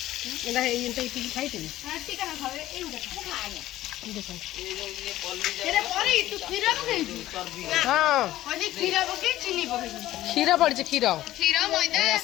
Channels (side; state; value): right; quieter; 14.8 dB